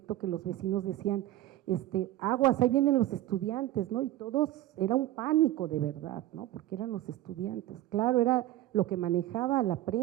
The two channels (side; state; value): left; quieter; 14.7 dB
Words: que los vecinos decían, aguas, ahí vienen los estudiantes, ¿no? Y todos, era un pánico de verdad, ¿no? Porque eran los estudiantes, claro, era lo que manejaba la